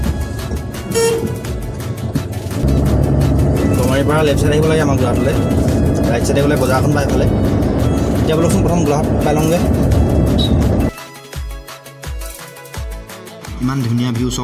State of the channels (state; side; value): identical; both; correlation 1.00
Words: গমাৰিৰ পৰা লেফ্ট চাইড আহিব লাগে আমাৰ গোলাঘাটলৈ ৰাইট চাইডে গ'লে বজাৰখন পাই পেলাই এতিয়া বলকচোন প্ৰথম গোলাঘাট পাই লওঁগৈ ইমান ধুনীয়া ভিউ